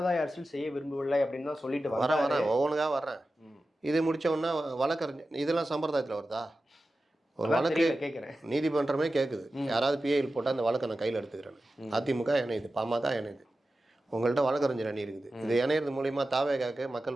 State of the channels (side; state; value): both; normal; correlation 0.94